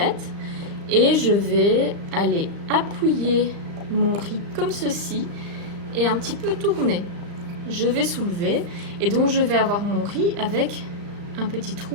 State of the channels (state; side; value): late; left; 35 ms